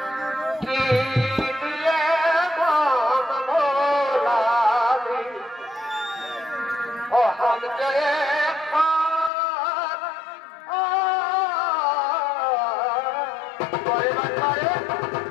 কি দিয়ে মন ভোলারে অহামকে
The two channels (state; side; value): drops out; right; at 9.3 s